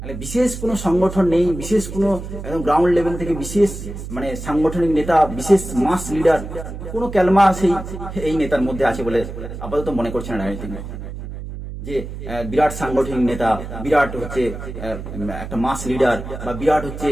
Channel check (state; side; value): noise; right; hum, 9 dB below the sound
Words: মানে বিশেষ কোনো সংগঠন নেই, বিশেষ কোনো একদম গ্রাউন্ড লেভেল থেকে বিশেষ মানে সাংগঠনিক নেতা, বিশেষ মাস লিডার, কোনো ক্যালমা এই নেতার মধ্যে আছে বলে আপাতত মনে করছে না রাজনীতি, যে বিরাট সাংগঠনিক নেতা, বিরাট হচ্ছে একটা মাস লিডার, বা বিরাট হচ্ছে